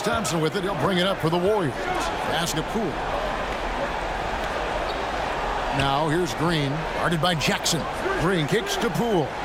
with it. He'll bring it up for the Warriors. Pass to Poole. Now here's Green. Guarded by Jackson. Green kicks to Poole.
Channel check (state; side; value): identical; both; correlation 1.00